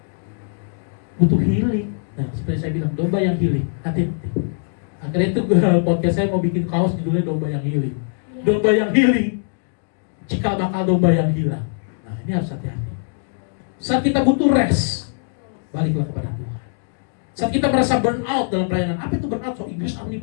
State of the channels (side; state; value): right; silent; digital silence